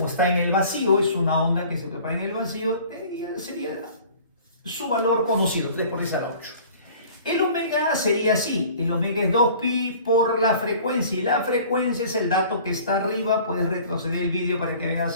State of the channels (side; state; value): both; inverted; correlation -0.48